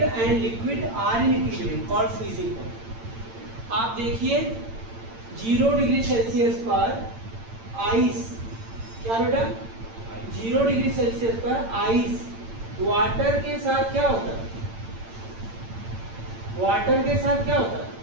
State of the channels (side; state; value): left; late; 8.8 ms